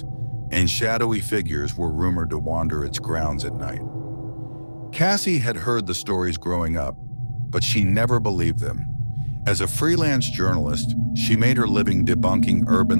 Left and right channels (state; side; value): inverted; both; correlation -1.00